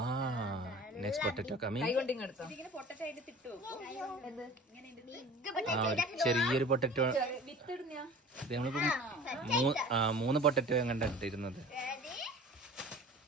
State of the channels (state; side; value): normal; both; correlation 0.42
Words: Next potato coming. കൈ കൊണ്ട് ഇങ്ങെടുത്തോ. ഇതിങ്ങനെ പൊട്ടറ്റോ അതിന്റെ തിട്ട് വെക്കും. ചെറിയൊരു പൊട്ടറ്റോ. വിത്തിടുന്ന നമ്മളിപ്പോ 3 പൊട്ടറ്റോ എങ്ങാണ്ട് ഇട്ടിരുന്നത്.